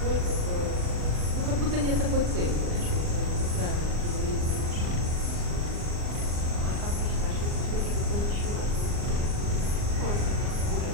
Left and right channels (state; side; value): late; left; 39 ms